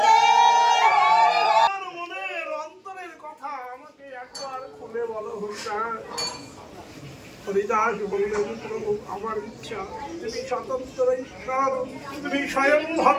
মনের অন্তরের কথা আমাকে একবার খুলে বলো হরিদাস। হরিদাস বললেন, প্রভু আমার ইচ্ছা, তুমি স্বতন্ত্র ঈশ্বর, তুমি স্বয়ং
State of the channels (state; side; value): identical; both; correlation 1.00